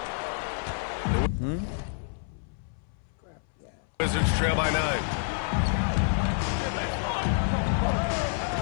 Wizards trail by 9.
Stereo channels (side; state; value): right; silent; 59 dB below the other